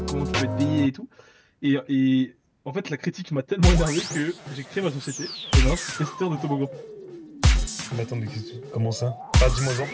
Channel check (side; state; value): both; identical; correlation 1.00